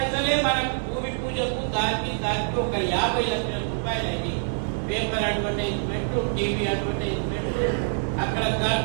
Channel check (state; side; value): silent; left; 55 dB below the other